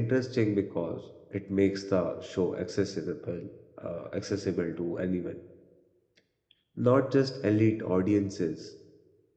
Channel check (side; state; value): both; identical; correlation 1.00